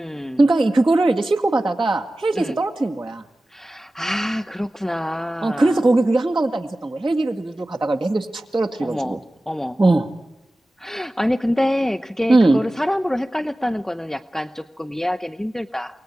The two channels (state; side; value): normal; both; correlation 0.96